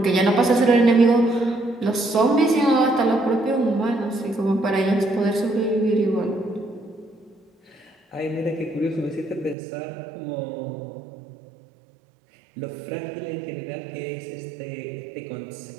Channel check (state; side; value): drops out; left; at 9.6 s